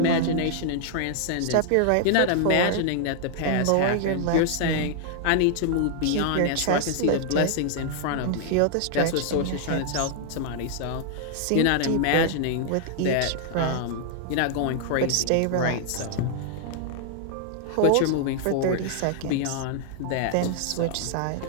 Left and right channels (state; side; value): different; both; correlation -0.01